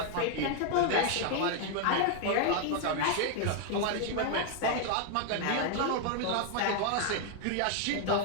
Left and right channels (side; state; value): both; different; correlation 0.00